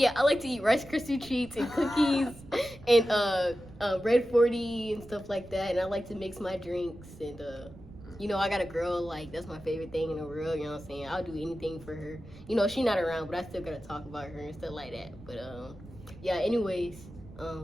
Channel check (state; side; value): noise; right; rumble, 18 dB below the sound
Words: I like to eat Rice Krispie treats and cookies and Red 40 and stuff like that. And I like to mix my drinks and you know, I got a girl, like, that's my favorite thing in the world, you know what I'm saying? I'll do anything for her. You know, she's not around, but I still gotta talk about her and stuff like that. But, yeah, anyways,